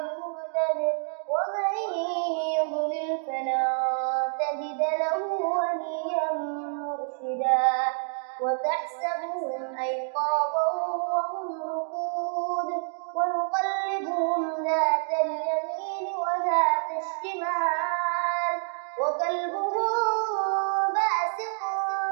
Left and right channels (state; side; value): silent; left; digital silence